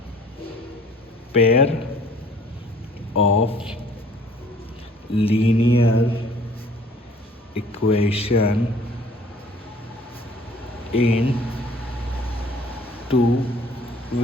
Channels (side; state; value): both; normal; correlation 0.54